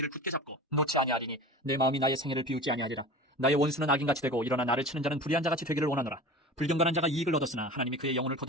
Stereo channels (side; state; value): both; normal; correlation 0.35